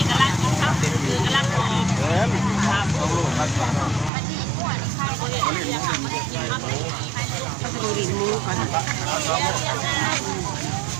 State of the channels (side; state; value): left; drops out; at 4.1 s